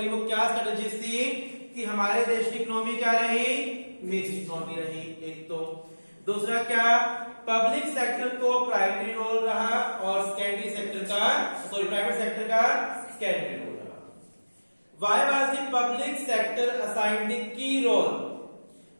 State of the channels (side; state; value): both; inverted; correlation -1.00